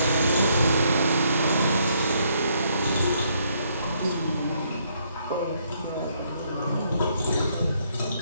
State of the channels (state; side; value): inverted; both; correlation -0.71